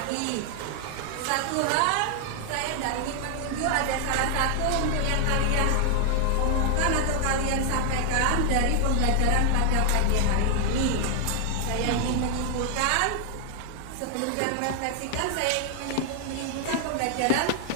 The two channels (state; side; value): different; both; correlation 0.00